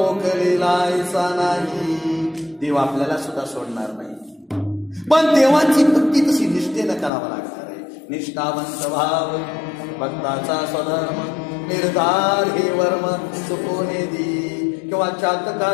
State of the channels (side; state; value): right; drops out; at 7.1 s